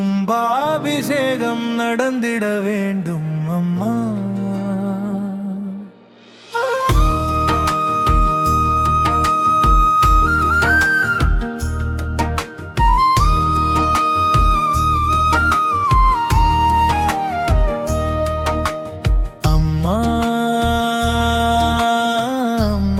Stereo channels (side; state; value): both; identical; correlation 1.00